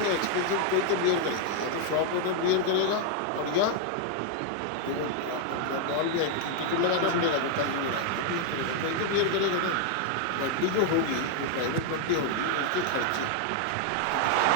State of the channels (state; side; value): different; both; correlation 0.00